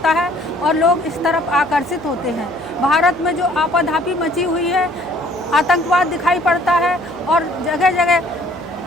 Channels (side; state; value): left; noise; hum, 25 dB below the sound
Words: है और लोग इस तरफ आकर्षित होते हैं। भारत में जो आपाधापी मची हुई है, आतंकवाद दिखाई पड़ता है और जगह जगह